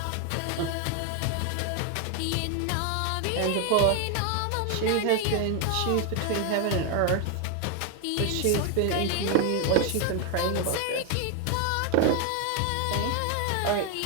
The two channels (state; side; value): different; both; correlation 0.01